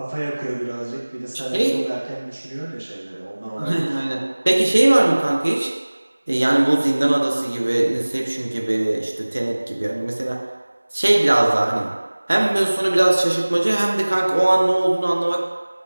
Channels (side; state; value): both; inverted; correlation -1.00